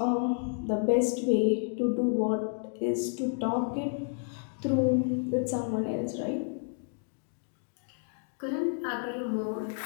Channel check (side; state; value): right; silent; 57 dB below the other